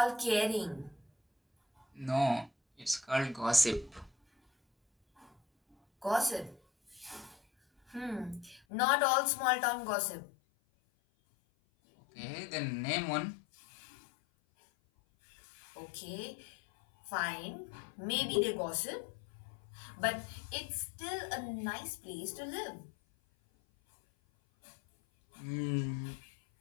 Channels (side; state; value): right; drops out; at 8.6 s